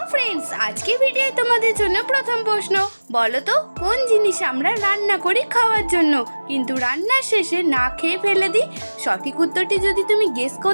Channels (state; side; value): inverted; both; correlation -1.00